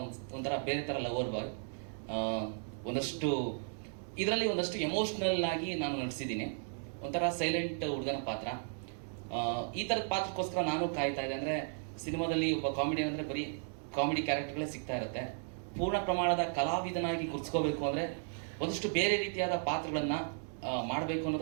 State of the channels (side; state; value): left; silent; 54 dB below the other